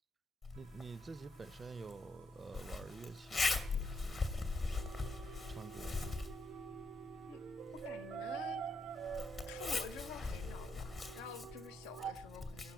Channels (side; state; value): both; normal; correlation 0.79